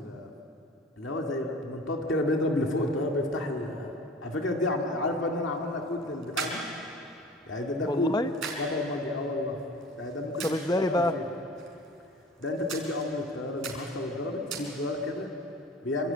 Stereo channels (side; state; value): both; normal; correlation 0.41